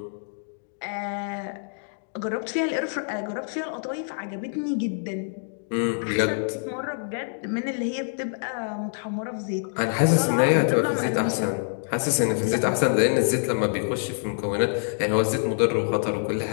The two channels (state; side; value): silent; right; digital silence